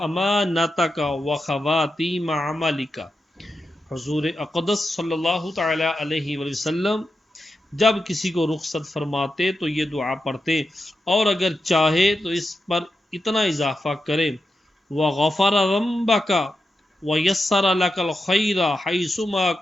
و خواتیم عملک۔ حضور اقدس صلی اللہ تعالی علیہ وسلم جب کسی کو رخصت فرماتے تو یہ دعا پڑھتے، اور اگر چاہے تو اس پر اتنا اضافہ کرے، وغفر ذنبک ویسر لک الخیر حیثما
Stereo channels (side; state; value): both; normal; correlation 0.88